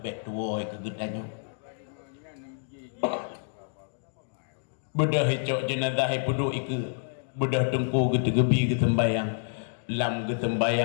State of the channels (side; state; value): right; silent; digital silence